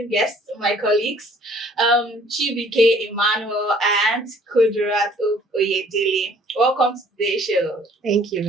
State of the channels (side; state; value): both; normal; correlation 0.57